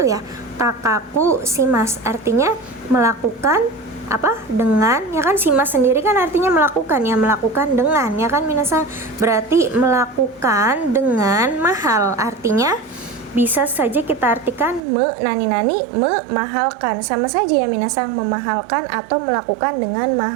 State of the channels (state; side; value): drops out; left; at 14.9 s